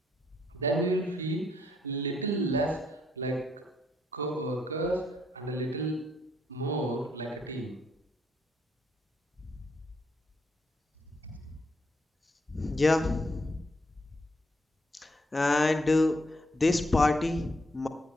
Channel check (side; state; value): both; normal; correlation 0.74